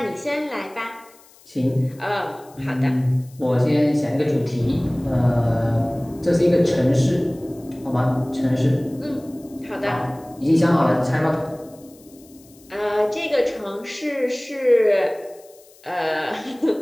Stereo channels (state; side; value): noise; left; hiss, 26 dB below the sound